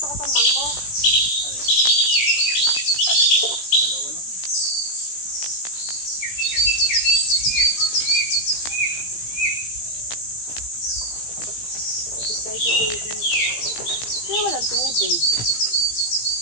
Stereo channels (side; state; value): right; late; 17 ms